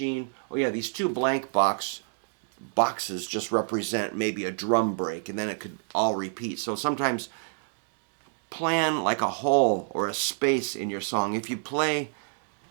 Oh yeah, these 2 blank boxes just represent maybe a drum break, and then it could all repeat. So sometimes plan like a hole or a space in your song. If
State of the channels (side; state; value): left; silent; digital silence